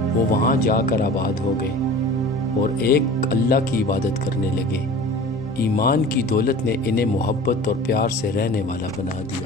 وہ وہاں جا کر آباد ہو گئے اور ایک اللہ کی عبادت کرنے لگے۔ ایمان کی دولت نے انہیں محبت اور پیار سے رہنے والا بنا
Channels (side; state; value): both; normal; correlation 0.40